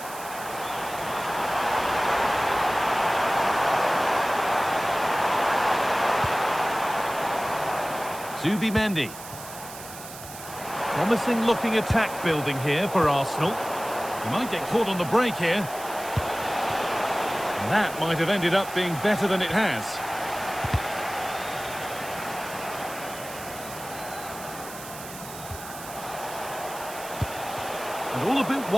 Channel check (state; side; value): noise; right; hiss, 13 dB below the sound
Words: Zubimendi. Promising looking attack building here for Arsenal. He might get caught on the break here. And that might have ended up being better than it has. And all a bit